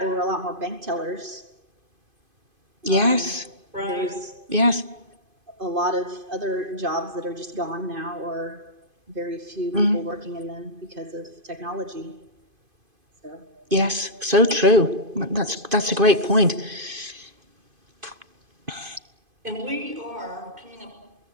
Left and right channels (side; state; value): left; late; 2.5 ms